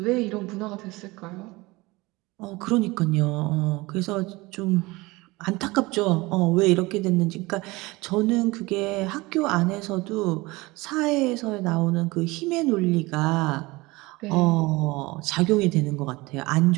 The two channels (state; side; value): quieter; left; 22.2 dB